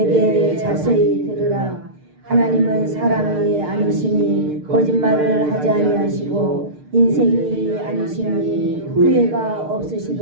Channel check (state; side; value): late; left; 6.6 ms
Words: 자세히 들으라. 하나님은 사람이 아니시니 거짓말을 하지 아니하시고 인생이 아니시니 후회가